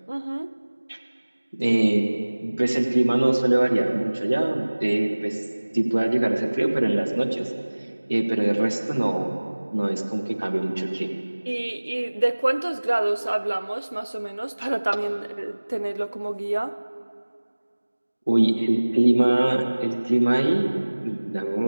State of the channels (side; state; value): both; inverted; correlation -1.00